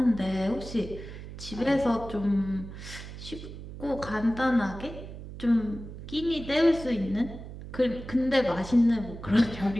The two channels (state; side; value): noise; right; hum, 12 dB below the sound